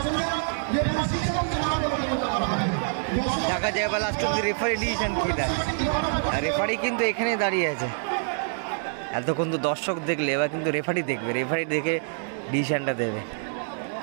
দেখা যায় বা লাস্ট অব্দি রেফারি ডিসিশন কি দেয়। রেফারি কিন্তু এখানে দাঁড়িয়ে আছে। এতক্ষণ তো দর্শক দেখলে, এবার কিন্তু রেফারি দেখবে, রেফারি দেখে ডিসিশনটা দেবে।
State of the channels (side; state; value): left; silent; digital silence